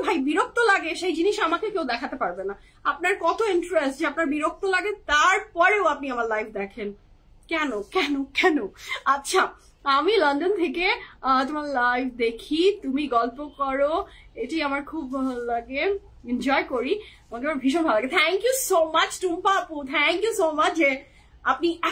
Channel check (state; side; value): identical; both; correlation 1.00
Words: ভাই বিরক্ত লাগে সেই জিনিস আমাকে কেউ দেখাতে পারবে না। আপনার কত ইন্টারেস্ট যে আপনার বিরক্ত লাগে তারপরেও আপনি আমার লাইভ দেখেন, কেন কেন কেন? আচ্ছা, আমি লন্ডন থেকে তোমার লাইভ দেখি, তুমি গল্প করো, এটি আমার খুব ভালো লাগে, এনজয় করি, আমাকে আমার ভীষণ ভালো লাগে। Thank you so much Tumpa আপু, থ্যাংক ইউ সো মাচ যে আপনি